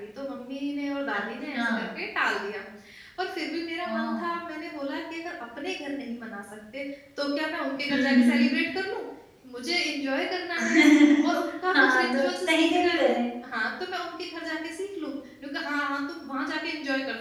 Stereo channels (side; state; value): both; identical; correlation 1.00